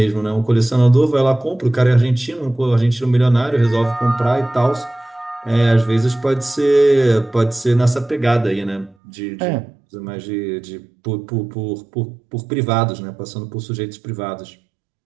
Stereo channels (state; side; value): drops out; left; at 9.0 s